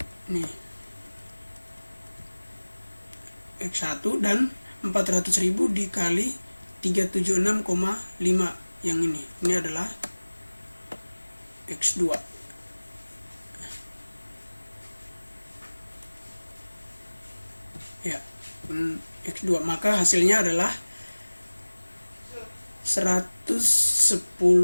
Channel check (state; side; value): inverted; both; correlation -1.00